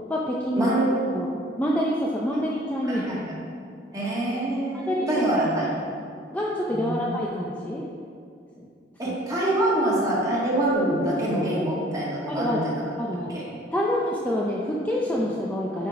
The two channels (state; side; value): normal; both; correlation 0.54